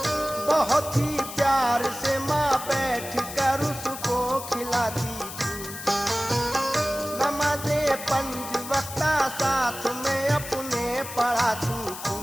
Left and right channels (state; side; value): noise; left; hiss, 10 dB below the sound